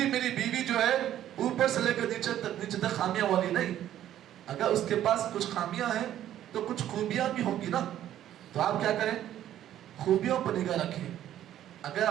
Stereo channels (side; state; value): left; quieter; 11.8 dB